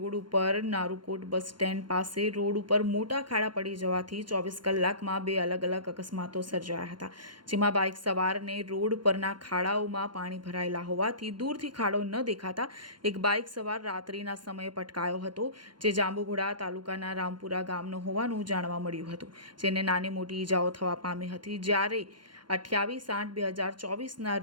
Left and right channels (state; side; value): late; left; 0.71 ms